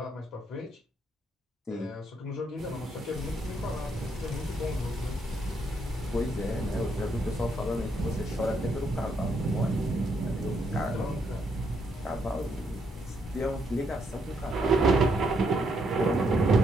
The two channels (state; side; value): normal; both; correlation 0.75